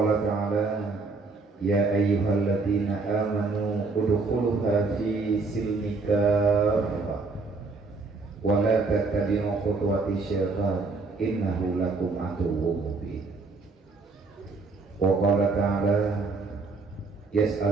ta'ala ya ayyuhalladzina amanu udkhuluha fi silmi kaffah wa la tattabi'u khutuwati syaitan innahu lakum aduwwun mubin. Wa qala ta'ala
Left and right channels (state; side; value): quieter; left; 4.0 dB